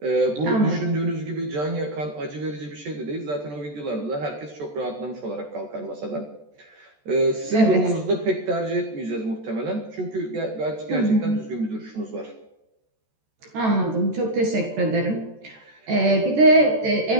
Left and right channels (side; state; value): left; late; 14 ms